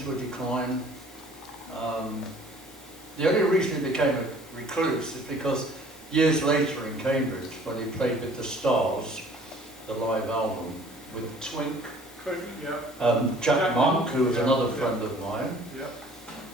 a decline. The only reason he became a recluse is because years later in Cambridge, when he played with the Stars, the live album, with Twink, Jack Monk, who was another friend of mine,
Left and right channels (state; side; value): normal; both; correlation 0.53